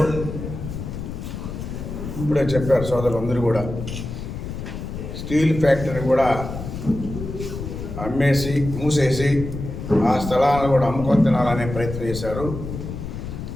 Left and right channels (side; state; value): left; noise; rumble, 7 dB below the sound